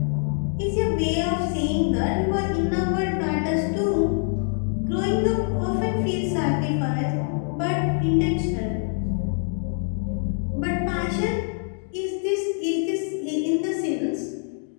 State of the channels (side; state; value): right; silent; 56 dB below the other